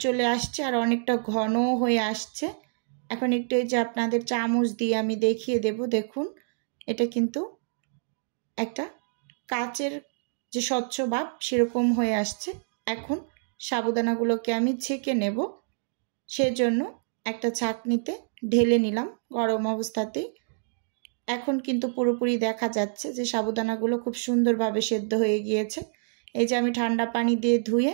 চলে আসছে আর অনেকটা ঘনও হয়ে আসছে। এখন একটু এই যে আপনাদের চামচ দিয়ে আমি দেখিয়ে দেব, দেখুন এটা কিন্তু একটা কাচের যে স্বচ্ছ ভাব সেরকম হয়ে আসছে। এখন সাবুদানাগুলোকে আমি ছেঁকে নেব, সেজন্য একটা ছাঁকনিতে ঢেলে নিলাম গরম অবস্থাতেই। এখন কিন্তু পুরোপুরি দেখা যাচ্ছে যে সাবুদানাগুলো খুব সুন্দরভাবে সেদ্ধ হয়ে গিয়েছে। এই যে আমি ঠান্ডা পানি দিয়ে ধুয়ে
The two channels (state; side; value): silent; left; digital silence